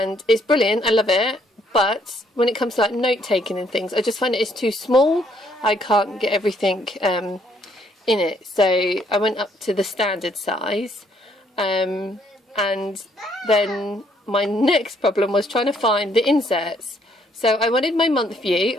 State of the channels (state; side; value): normal; both; correlation 0.68